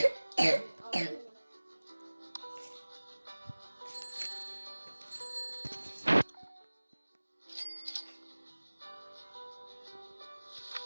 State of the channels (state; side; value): inverted; both; correlation -1.00